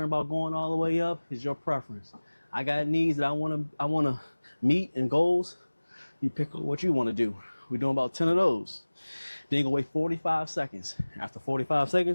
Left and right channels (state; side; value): inverted; both; correlation -1.00